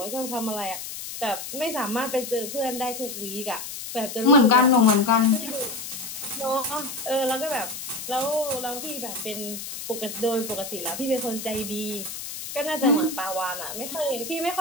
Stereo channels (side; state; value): left; noise; hiss, 8 dB below the sound